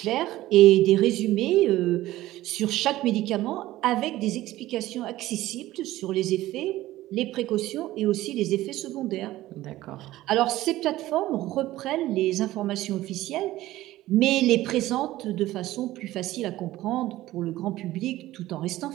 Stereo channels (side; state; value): left; quieter; 16.0 dB